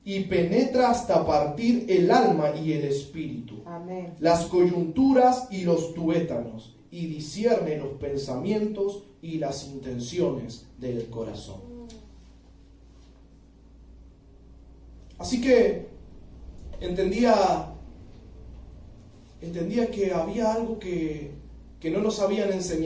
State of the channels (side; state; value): both; identical; correlation 1.00